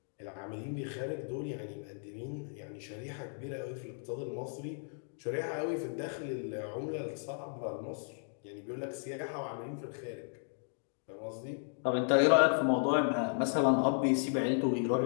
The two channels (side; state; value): right; silent; digital silence